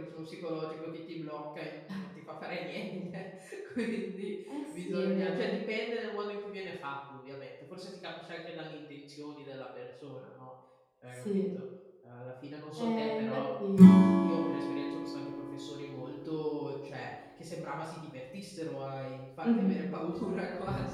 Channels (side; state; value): both; identical; correlation 1.00